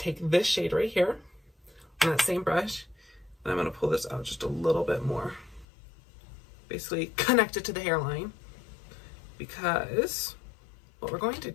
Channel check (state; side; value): drops out; right; at 5.7 s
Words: this shade right here on that same brush, and I'm going to pull this out just a little bit more. Basically connect it to the hairline, because what we're going to